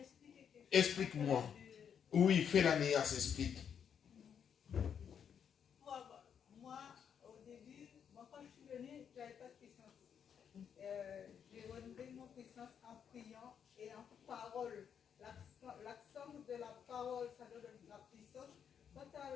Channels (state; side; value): quieter; right; 7.9 dB